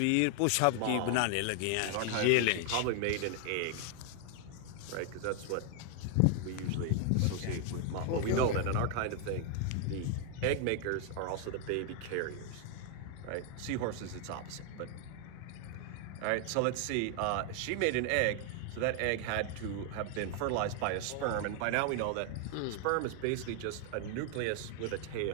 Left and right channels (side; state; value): both; different; correlation 0.00